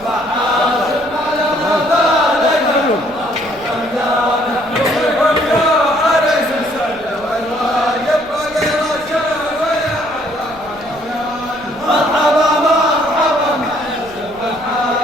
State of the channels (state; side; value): noise; left; rumble, 23 dB below the sound